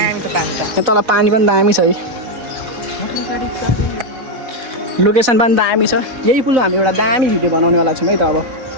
तल पानी पनि दामी छ है, लोकेसन पनि दामी छ। यही पुल हामी एउटा दामी भिडियो बनाउनेवाला छौँ है त अब।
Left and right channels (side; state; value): left; late; 4.0 ms